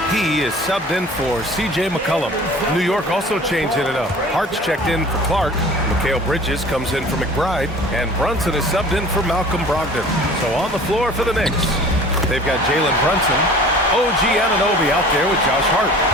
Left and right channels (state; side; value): normal; both; correlation 0.45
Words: is subbed in for C.J. McCollum. New York also changing it up. Hart's checked in for Clark. Mikal Bridges comes in for McBride. And Brunson is subbed in for Malcolm Brogdon. So on the floor for the Knicks. They've got Jalen Brunson, OG Anunoby out there with Josh Hart.